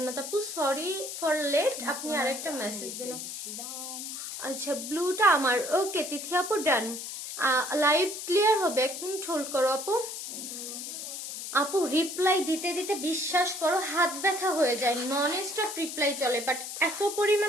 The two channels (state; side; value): noise; left; hiss, 7 dB below the sound